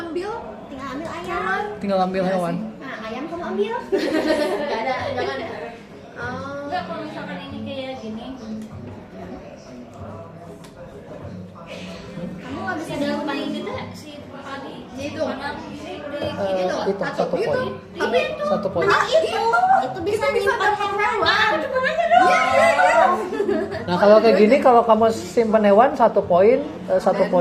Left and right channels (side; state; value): both; identical; correlation 1.00